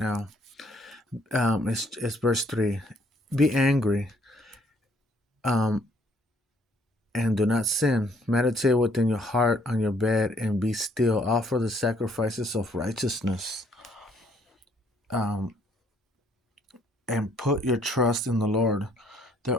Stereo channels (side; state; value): both; normal; correlation 0.65